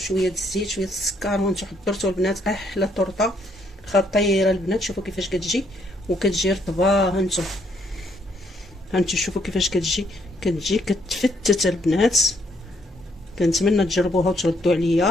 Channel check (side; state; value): both; normal; correlation 0.70